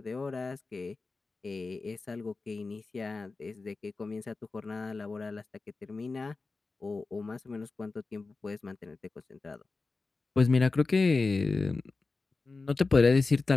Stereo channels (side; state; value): right; quieter; 3.9 dB